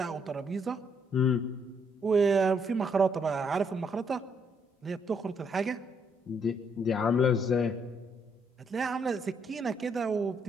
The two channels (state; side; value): normal; both; correlation 0.72